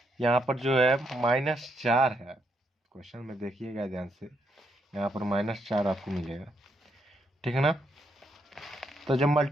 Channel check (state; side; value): normal; both; correlation 0.77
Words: यहाँ पर जो है -4 है। क्वेश्चन में देखिएगा ध्यान से यहाँ पर -4 आपको मिलेगा ठीक है ना। तो जब